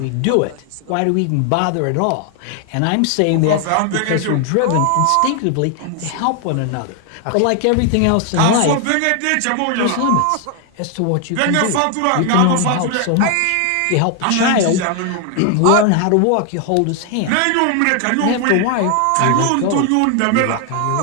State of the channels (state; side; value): different; both; correlation 0.00